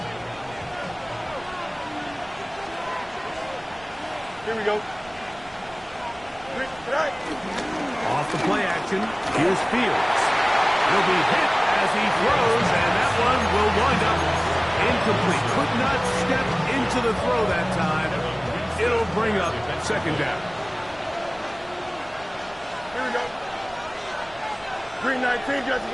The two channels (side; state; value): right; noise; rumble, 24 dB below the sound